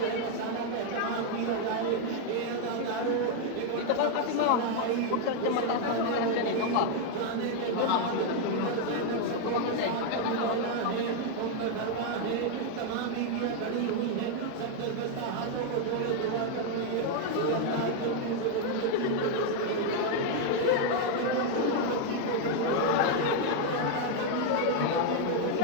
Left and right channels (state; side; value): different; both; correlation 0.00